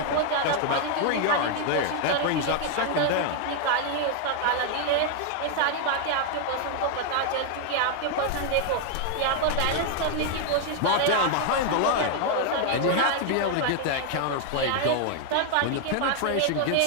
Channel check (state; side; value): different; both; correlation 0.00